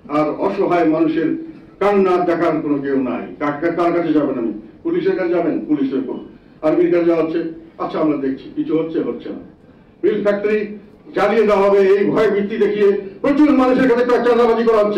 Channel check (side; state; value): both; identical; correlation 1.00